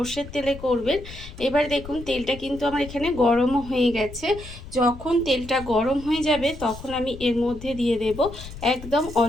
তেলে করবেন। এবার দেখুন তেলটা কিন্তু আমার এখানে গরমও হয়ে গেছে। যখন তেলটা গরম হয়ে যাবে তখন আমি এর মধ্যে দিয়ে দেব একদম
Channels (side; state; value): left; noise; rumble, 14 dB below the sound